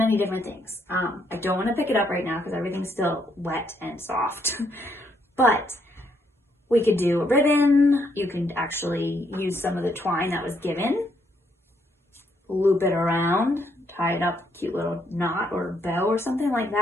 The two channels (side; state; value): both; normal; correlation 0.73